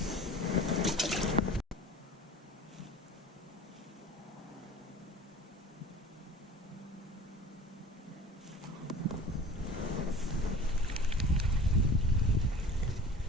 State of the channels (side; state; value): both; normal; correlation 0.41